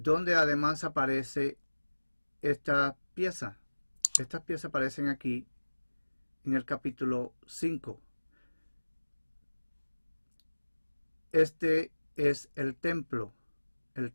además aparece esta pieza. Estas piezas aparecen aquí en el capítulo 5. Este es el templo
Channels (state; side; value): inverted; both; correlation -1.00